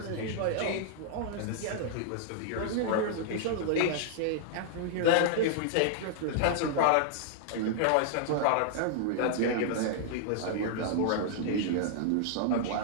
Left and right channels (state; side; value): different; both; correlation -0.01